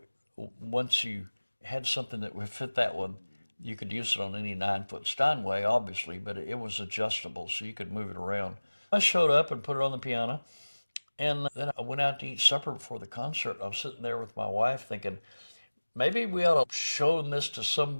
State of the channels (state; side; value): inverted; both; correlation -1.00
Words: once you had something that would fit that one, you could use it on any 9-foot Steinway, obviously, but it was adjustable, so you could move it around. I showed up and put it on the piano, and then I went out to eat supper before the concert. I was sitting there with my wife thinking, maybe we ought to show this to